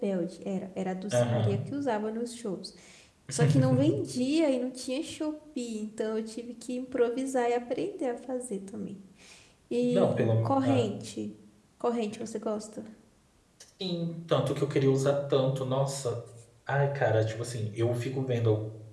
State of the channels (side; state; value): both; identical; correlation 1.00